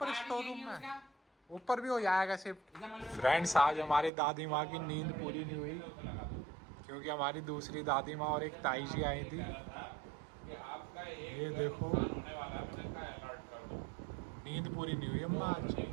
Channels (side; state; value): left; drops out; at 4.1 s